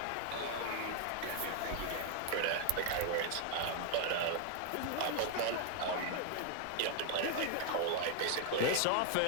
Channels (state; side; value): different; both; correlation 0.00